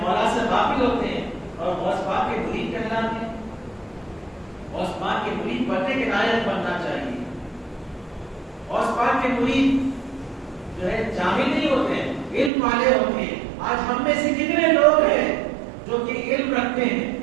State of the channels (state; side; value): drops out; left; at 12.5 s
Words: سے غافل ہوتے ہیں اور غوث پاک کے مرید کہلاتے ہیں۔ غوث پاک کے مرید بننے کے لائق بننا چاہیے۔ غوث پاک کے مرید جو ہے جاہل نہیں ہوتے ہیں، علم والے ہوتے ہیں۔ آج ہم میں سے کتنے لوگ ہیں جو کہ علم رکھتے ہیں؟